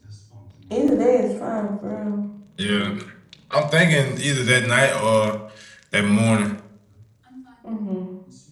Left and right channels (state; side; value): identical; both; correlation 1.00